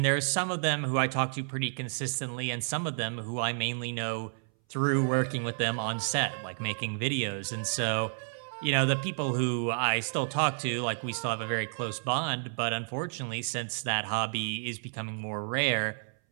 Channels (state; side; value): silent; left; 57 dB below the other